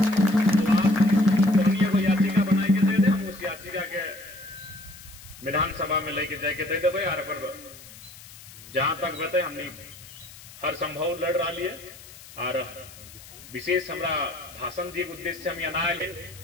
तो आप को याचिका बना के दे दे, हम उस याचिका के विधानसभा में लेके जाके दे देवे। और अगर जहां तक बते हमने हर संभव लड़ रहा लिए, और विशेष हमारा भाषण दिए उद्देश्य से हम यहाँ आए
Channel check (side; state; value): left; noise; hiss, 18 dB below the sound